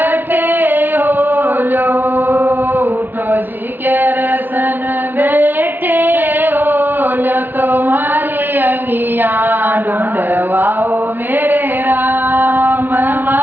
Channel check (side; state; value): left; late; 0.092 ms